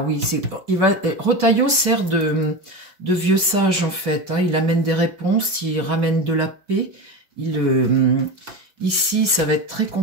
oui, Retailleau sert de vieux sage, en fait, hein. Il amène des réponses, il ramène de la paix. Ici, ça va être très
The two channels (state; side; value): late; left; 5.3 ms